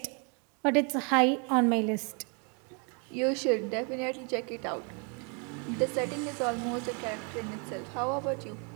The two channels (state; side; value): quieter; left; 36.4 dB